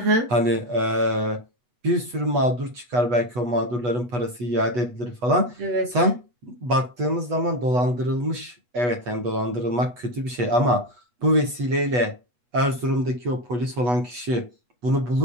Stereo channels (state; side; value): late; left; 8.2 ms